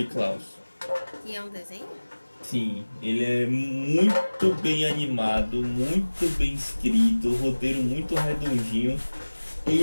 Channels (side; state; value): both; inverted; correlation -1.00